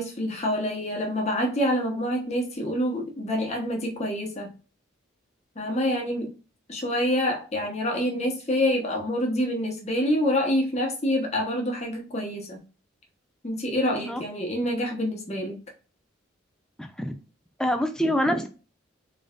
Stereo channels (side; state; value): both; normal; correlation 0.48